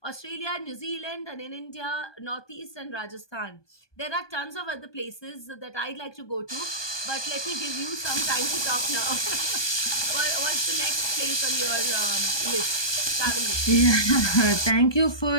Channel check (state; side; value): late; right; 1.2 ms